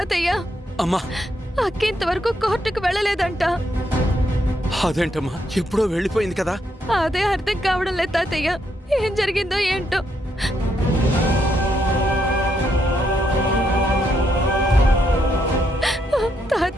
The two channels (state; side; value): normal; both; correlation 0.77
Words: అమ్మా, అక్క ఇంతవరకు కోర్టుకు వెళ్ళలేదంట. అదేంటమ్మా, ఎప్పుడో వెళ్ళిపోయింది కదా. అదే అర్థం కావడం లేదు తాతయ్య, ఏం జరిగిందో ఏంటో.